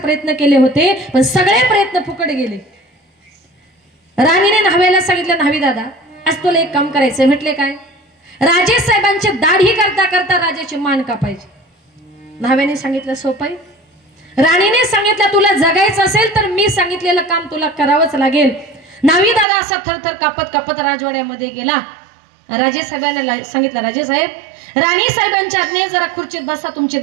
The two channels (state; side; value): drops out; left; at 19.5 s